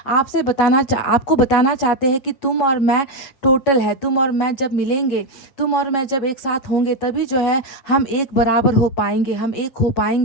आपको बताना चाहते हैं कि तुम और मैं टोटल है, तुम और मैं जब मिलेंगे, तुम और मैं जब एक साथ होंगे, तभी जो है हम एक बराबर हो पाएंगे, हम एक हो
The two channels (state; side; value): late; right; 7.3 ms